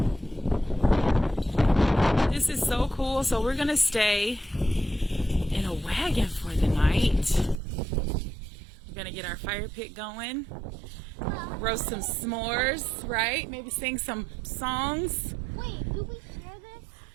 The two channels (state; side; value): drops out; left; at 7.6 s